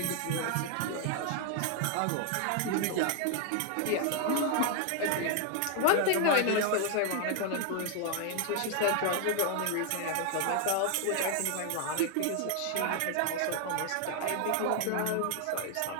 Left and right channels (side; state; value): both; different; correlation 0.00